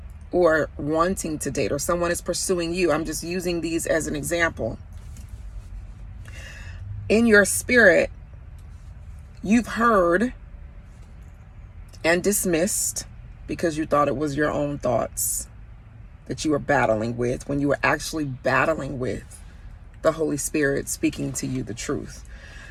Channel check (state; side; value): identical; both; correlation 1.00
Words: or wanting to date, or someone is pursuing you. I'm just using these as an example. In your spirit, you've heard and dismissed because you thought it was your own thoughts that you were battling with, when you were actually battling with the Holy Spirit speaking to you the truth